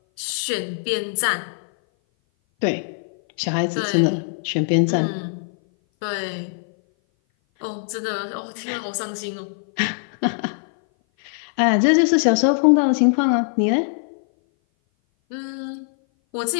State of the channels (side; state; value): right; silent; 58 dB below the other